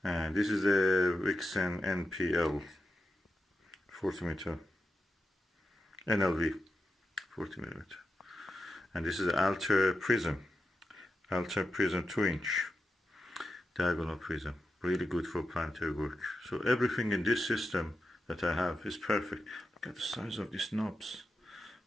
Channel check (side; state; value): both; normal; correlation 0.89